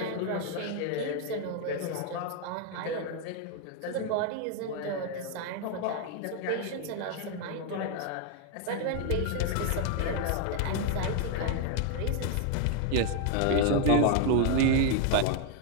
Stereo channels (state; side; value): different; both; correlation 0.01